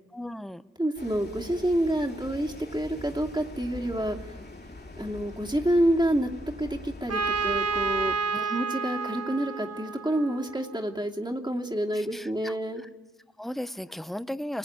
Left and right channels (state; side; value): normal; both; correlation 0.79